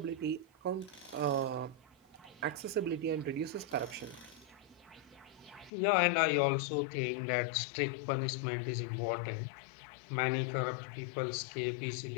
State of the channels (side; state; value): right; drops out; at 5.7 s